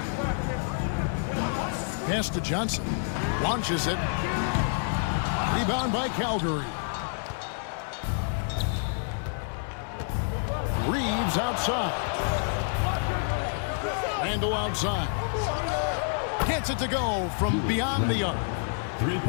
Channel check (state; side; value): silent; right; digital silence